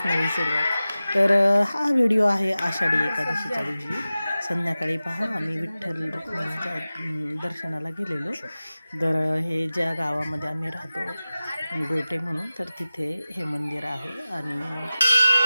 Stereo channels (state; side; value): inverted; both; correlation -0.96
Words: नवी सुरुवात. तर हा व्हिडिओ आहे आषाढी एकादशीच्या दिवशी संध्याकाळी. पहा, आम्ही विठ्ठल रुक्मिणीच्या दर्शनाला गेलेलो. तर हे ज्या गावामध्ये आम्ही राहतो गोटे म्हणून, तर तिथे हे मंदिर आहे आणि